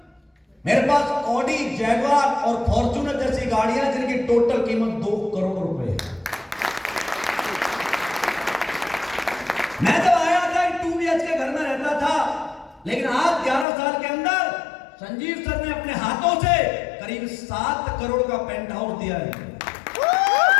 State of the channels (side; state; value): right; drops out; at 13.7 s